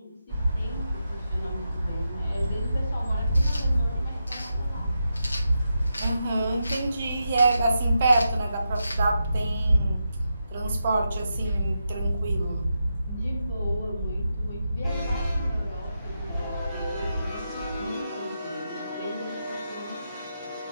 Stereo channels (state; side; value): inverted; both; correlation -0.86